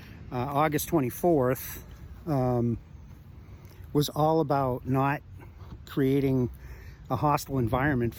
August 24th was all about not creating a hostile environment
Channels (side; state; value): both; identical; correlation 1.00